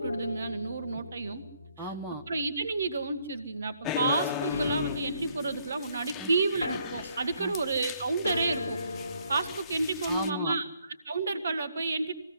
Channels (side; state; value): both; inverted; correlation -0.70